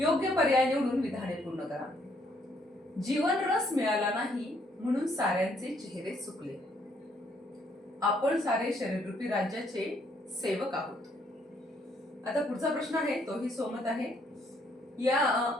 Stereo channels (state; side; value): normal; both; correlation 0.69